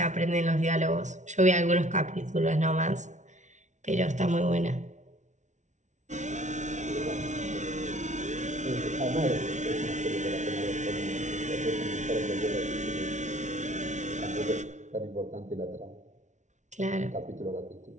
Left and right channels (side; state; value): left; late; 0.35 ms